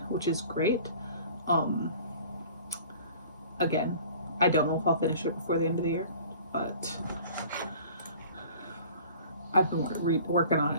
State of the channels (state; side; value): inverted; both; correlation -0.46